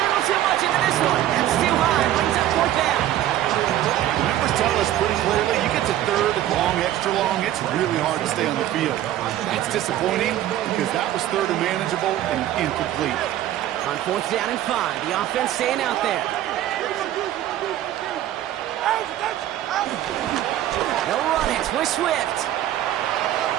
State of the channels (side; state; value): left; quieter; 12.8 dB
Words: too much into this one. That's too high. Brings up 4th down. Numbers tell us pretty clearly, you get to 3rd and long, extra long, it's really hard to stay on the field. That's disappointing because that was 3rd and manageable and incomplete. On 4th down and 5, the offense staying out there. They'll run it with Swift.